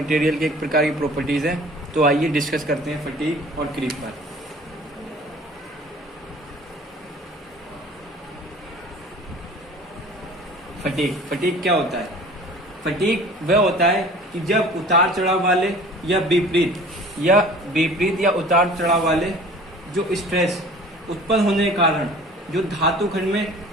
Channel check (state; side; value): normal; both; correlation 0.46